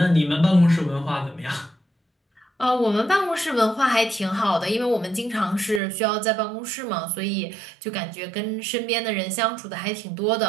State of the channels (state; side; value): drops out; left; at 5.8 s